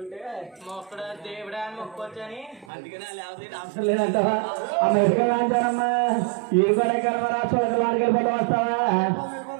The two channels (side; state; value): left; drops out; at 2.7 s